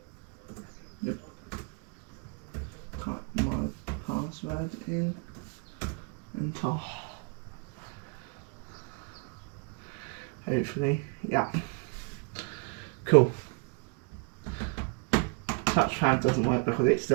Yep. Type my password in and hopefully, yeah. Cool. Touchpad doesn't work because it's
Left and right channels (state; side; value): quieter; left; 32.7 dB